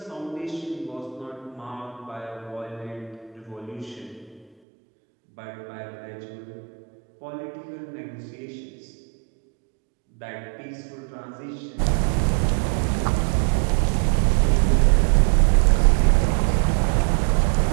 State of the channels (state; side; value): drops out; left; at 4.5 s